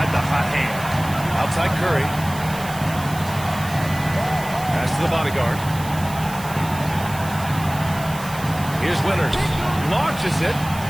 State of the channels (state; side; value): noise; right; hiss, 14 dB below the sound